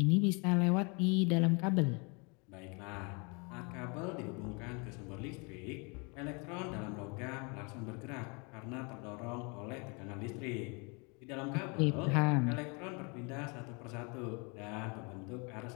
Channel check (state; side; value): quieter; right; 31.8 dB